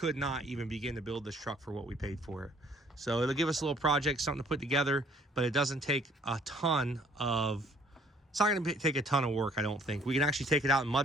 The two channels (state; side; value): normal; both; correlation 0.60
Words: not even begin to build this truck for what we paid for it. So it'll give us a little project, something to put together, but it doesn't take a ton of, it's not going to take a ton of work, I don't think. We can actually take it out and